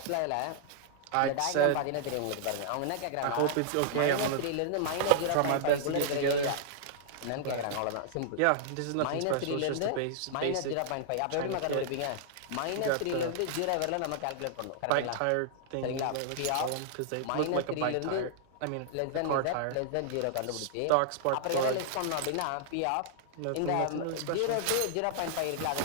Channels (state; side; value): different; both; correlation -0.01